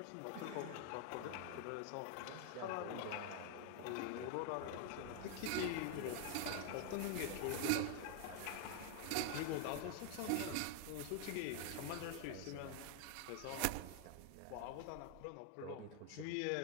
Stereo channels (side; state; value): both; different; correlation 0.00